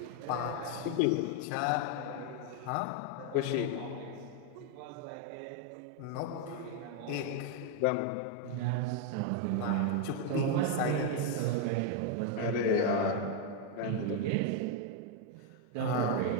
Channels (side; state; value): both; different; correlation 0.01